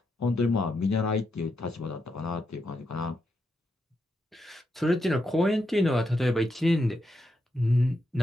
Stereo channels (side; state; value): both; normal; correlation 0.83